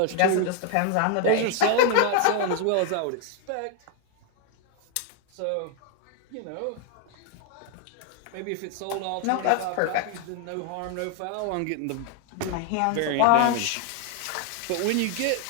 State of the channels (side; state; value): both; different; correlation 0.00